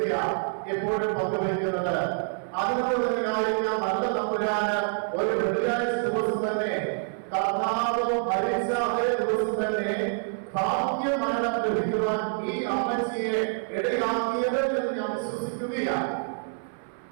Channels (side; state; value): left; silent; 60 dB below the other